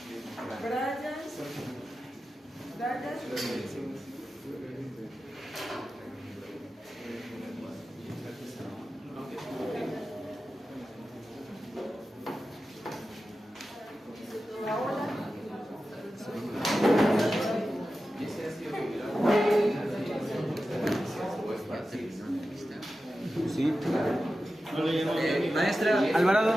Brian, Paola, Sí. Maestra, Alvarado.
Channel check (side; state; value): both; normal; correlation 0.93